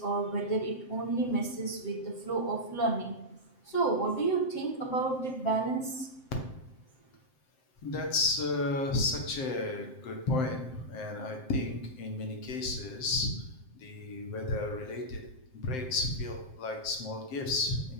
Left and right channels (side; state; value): right; late; 7.6 ms